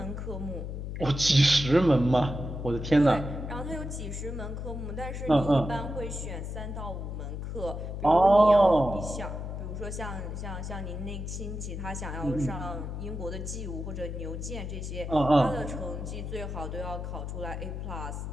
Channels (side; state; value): left; noise; hum, 6 dB below the sound